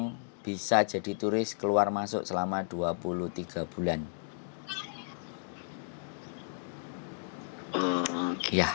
bisa jadi turis keluar masuk selama 23 bulan. Ya,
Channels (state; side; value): silent; right; digital silence